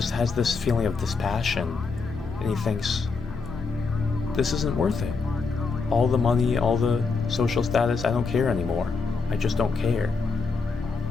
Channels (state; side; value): quieter; right; 4.6 dB